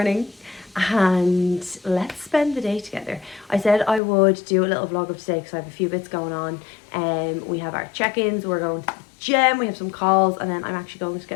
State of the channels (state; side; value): drops out; right; at 4.0 s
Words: And let's spend the day together. I said I would do a little vlog of today because I have a few bits going on. We have our check-ins, we're going to the gym, we have some calls, and then I'm actually going to